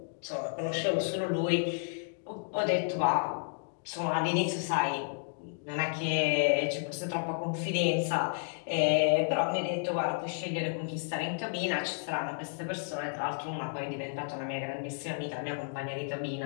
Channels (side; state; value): right; silent; digital silence